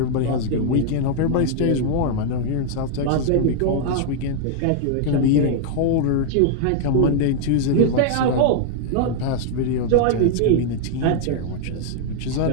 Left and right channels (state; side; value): different; both; correlation -0.01